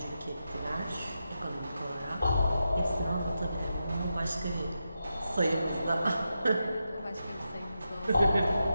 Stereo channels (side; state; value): both; inverted; correlation -0.88